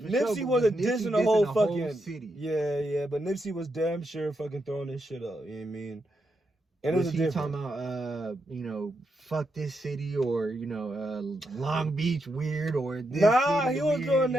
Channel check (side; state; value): both; normal; correlation 0.83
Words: for Nipsey sure, wasn't dissing the whole fucking city. Yeah, but Nipsey was damn sure fucking throwing this shit up. You know what I mean? And was he talking about fuck this city or Long Beach weird or this city he was weird, doing